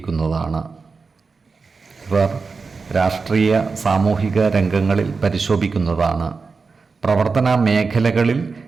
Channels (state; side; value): quieter; left; 4.6 dB